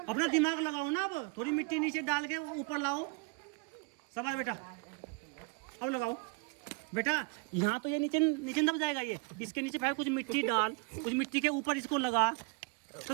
अपना दिमाग लगाओ ना। अब थोड़ी मिट्टी नीचे डाल के ऊपर लाओ। शाबाश बेटा, अब लगाओ बेटा। यहाँ तो ये नीचे नीचे दब जाएगा ये, इसके नीचे फिर कुछ मिट्टी डाल, कुछ मिट्टी के ऊपर इसको लगा। तो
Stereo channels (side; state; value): left; quieter; 31.4 dB